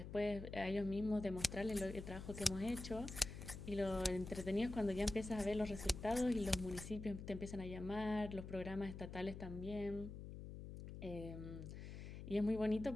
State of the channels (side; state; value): left; noise; hum, 9 dB below the sound